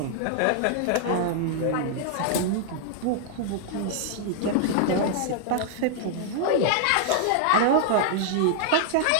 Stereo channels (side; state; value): both; different; correlation -0.01